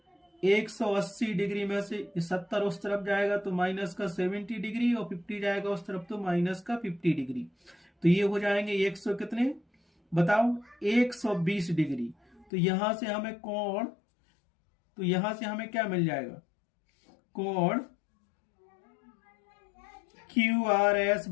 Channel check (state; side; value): drops out; right; at 12.5 s